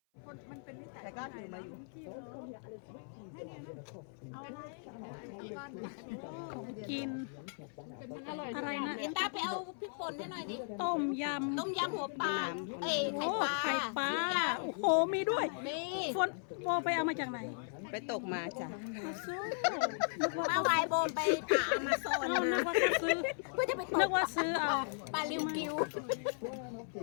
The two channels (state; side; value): silent; right; 53 dB below the other